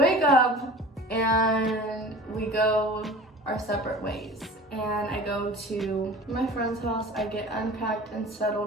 up and we go our separate ways. And I go to my friend's house. I get unpacked and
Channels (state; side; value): normal; both; correlation 0.40